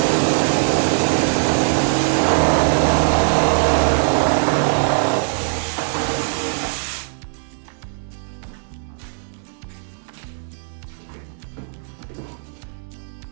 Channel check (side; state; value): left; silent; digital silence